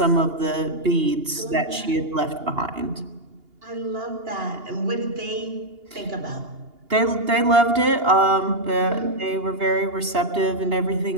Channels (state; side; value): late; left; 2.8 ms